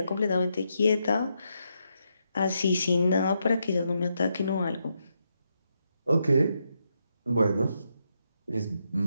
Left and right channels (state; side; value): inverted; both; correlation -0.81